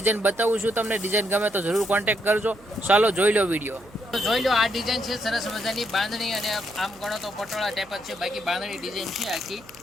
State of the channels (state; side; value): noise; right; hum, 25 dB below the sound